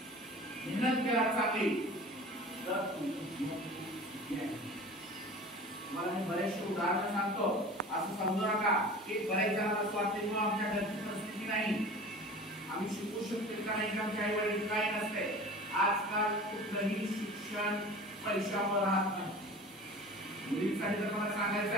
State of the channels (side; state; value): both; normal; correlation 0.39